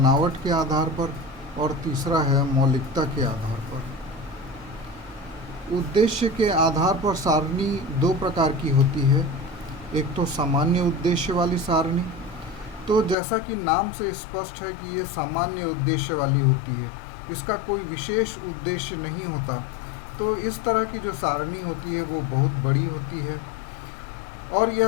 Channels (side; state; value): right; drops out; at 13.2 s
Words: के आधार पर और तीसरा है मौलिकता के आधार पर। उद्देश्य के आधार पर सारणी 2 प्रकार की होती है। एक तो सामान्य उद्देश्य वाली सारणी। तो जैसा कि नाम से स्पष्ट है कि ये सामान्य उद्देश्य वाली होती है, इसका कोई विशेष उद्देश्य नहीं होता। तो इस तरह की जो सारणी होती है वो बहुत बड़ी होती है और